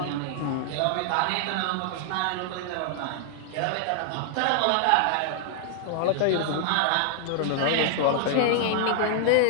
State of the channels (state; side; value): different; both; correlation -0.01